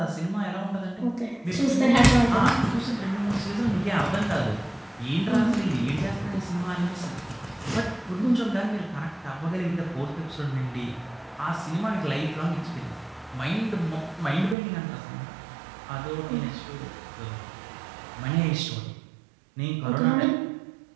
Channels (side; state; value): left; drops out; at 14.6 s